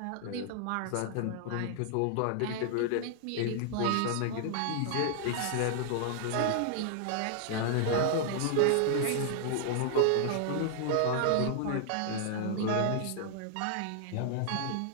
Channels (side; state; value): both; different; correlation -0.01